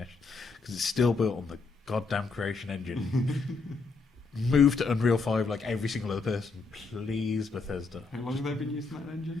because it's still built on the goddamn Creation Engine. Move to Unreal 5 like every single other person, please, Bethesda. how long have they been using that engine?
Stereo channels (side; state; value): right; quieter; 4.3 dB